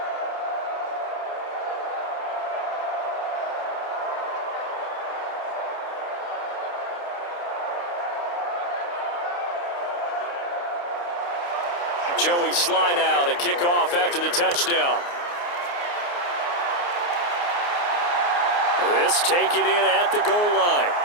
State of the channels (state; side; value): late; right; 29 ms